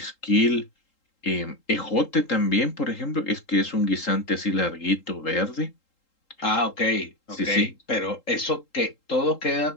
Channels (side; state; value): right; late; 3.8 ms